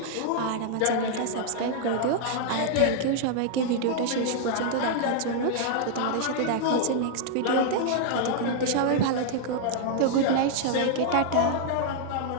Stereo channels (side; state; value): both; different; correlation -0.01